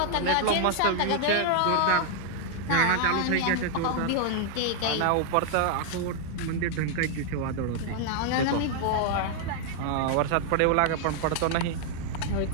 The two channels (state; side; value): different; both; correlation 0.00